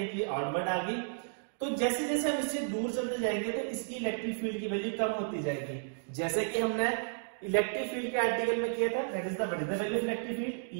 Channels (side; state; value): left; silent; digital silence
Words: आउटवर्ड आ गई। तो जैसे जैसे हम इससे दूर चलते जाएंगे तो इसकी इलेक्ट्रिक फील्ड की वैल्यू कम होती जाएगी। जैसे कि हमने इलेक्ट्रिक फील्ड के आर्टिकल में किया था, that is the what is the value of electric field?